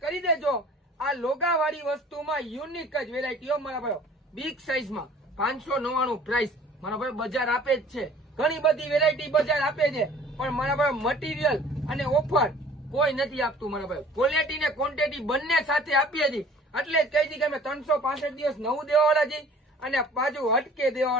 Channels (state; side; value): normal; both; correlation 0.50